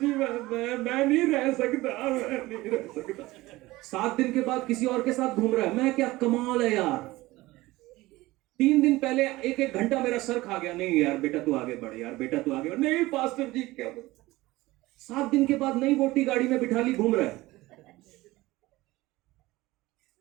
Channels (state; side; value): quieter; left; 19.1 dB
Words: मैं नहीं रह सकता, मैं नहीं रह सकता। 7 दिन के बाद किसी और के साथ घूम रहा है। मैं क्या कमाल है यार। 3 दिन पहले एक घंटा मेरा सर खा गया। नहीं यार बेटा तू आगे बढ़, यार बेटा तू आगे बढ़। नहीं पास्टर जी क्या। 7 दिन के बाद नई वोटी गाड़ी में बिठा ली, घूम रहा है।